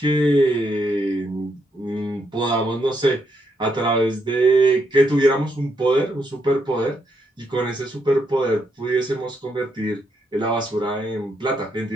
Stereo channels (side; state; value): both; normal; correlation 0.77